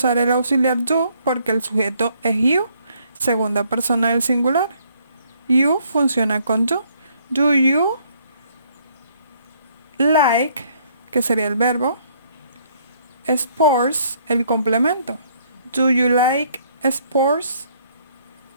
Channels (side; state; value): both; inverted; correlation -0.66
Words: el auxiliar do porque el sujeto es you, segunda persona del singular. You funciona con do. Do you like, que sería el verbo, sports, el complemento. Do you like sports?